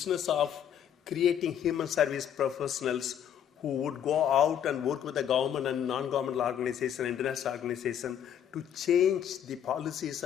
of creating human service professionals who would go out and work with the government and non-governmental organization, international organization, to change the policies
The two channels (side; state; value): right; quieter; 9.4 dB